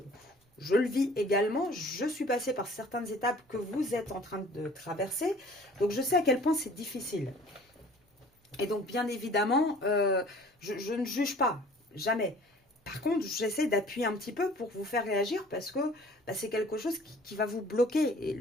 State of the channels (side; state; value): both; normal; correlation 0.50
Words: je le vis également, je suis passée par certaines étapes que vous êtes en train de traverser, donc je sais à quel point c'est difficile. Et donc bien évidemment, je ne juge pas, jamais. Par contre, j'essaie d'appuyer un petit peu pour vous faire réagir parce que bah, c'est quelque chose qui va vous bloquer. Et